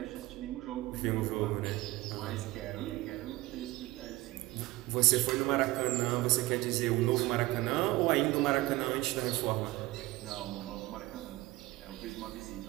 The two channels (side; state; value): left; quieter; 19.2 dB